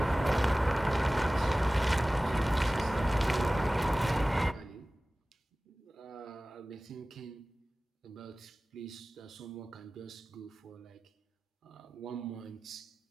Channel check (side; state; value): both; normal; correlation 0.97